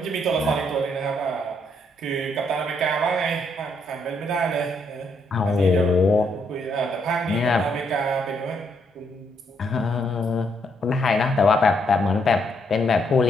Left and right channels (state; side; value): normal; both; correlation 0.74